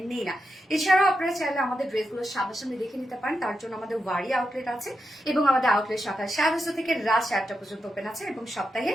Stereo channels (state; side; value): normal; both; correlation 0.87